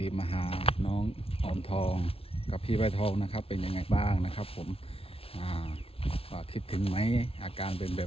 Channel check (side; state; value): right; late; 0.27 ms